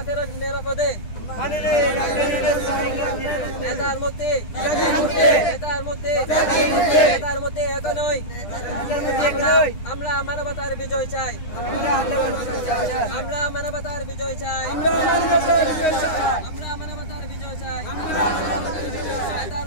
ফেরত নিরাপদে। নেতার মুক্তি। নেতার মুক্তি। নেতার মুক্তি এখনই। আমরা মানবতার বিজয় চাই। আমরা মানবতার বিজয় চাই। আমরা মানবতার বিজয় চাই। নেতার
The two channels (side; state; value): right; late; 9.9 ms